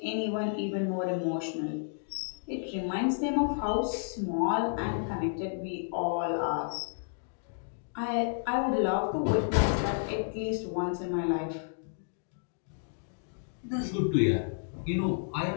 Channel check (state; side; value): silent; right; digital silence